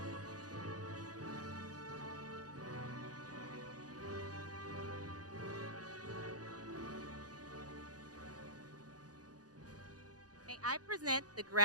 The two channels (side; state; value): left; late; 0.68 ms